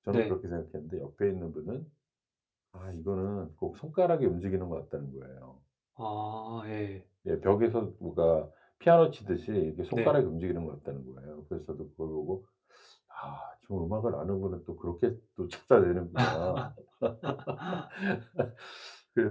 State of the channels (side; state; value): both; identical; correlation 1.00